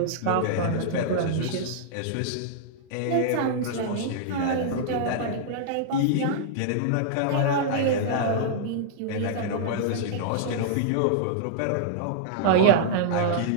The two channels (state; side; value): different; both; correlation -0.02